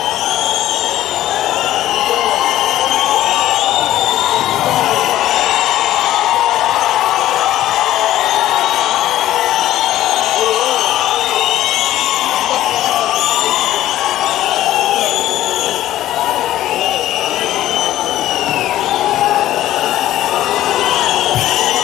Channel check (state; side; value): quieter; right; 13.8 dB